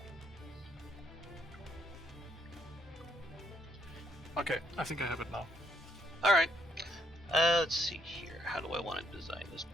Okay, I think I have it now. Alright. Let's see here. How do I want to design this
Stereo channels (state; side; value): normal; both; correlation 0.71